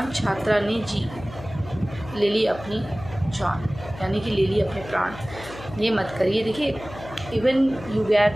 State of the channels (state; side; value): noise; left; hum, 14 dB below the sound